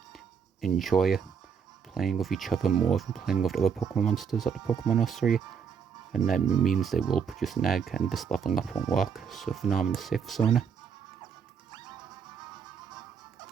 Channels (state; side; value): quieter; left; 6.8 dB